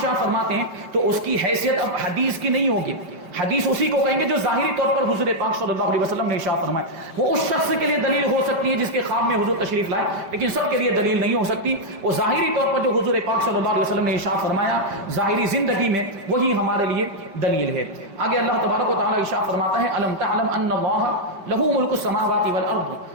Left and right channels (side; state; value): left; late; 5.1 ms